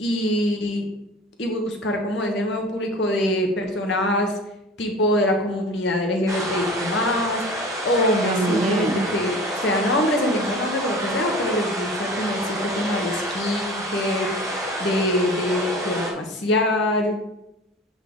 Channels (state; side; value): normal; both; correlation 0.39